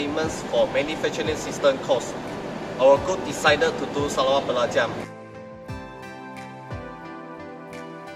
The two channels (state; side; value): identical; both; correlation 1.00